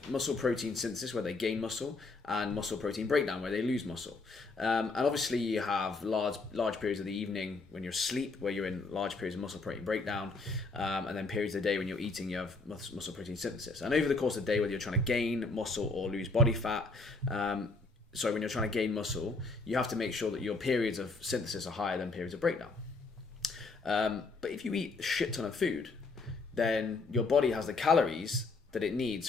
muscle protein synthesis, where they gain muscle, and muscle protein breakdown, where they lose muscle. And obviously you have large periods of the evening when you're asleep, where you're in large periods of muscle protein breakdown, and then periods of the day when you're eating, you have muscle protein synthesis. And over the course of the day, whether you're trying to gain muscle or lose body fat, when you're trying to gain muscle, you have to make sure that your periods of synthesis are higher than periods of breakdown. But if you eat a shit ton of food, then your body has the calories that it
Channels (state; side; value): quieter; right; 3.7 dB